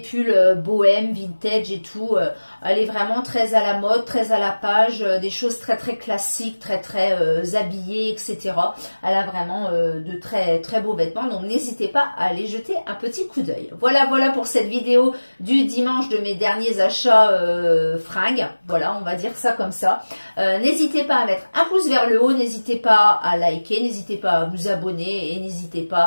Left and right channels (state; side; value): inverted; both; correlation -1.00